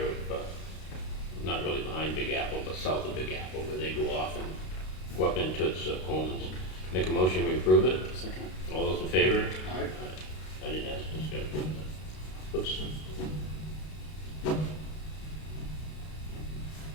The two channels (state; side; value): late; right; 32 ms